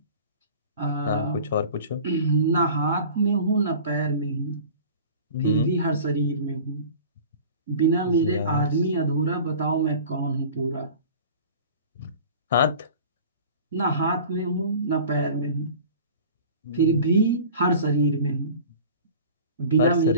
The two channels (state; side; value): inverted; both; correlation -0.41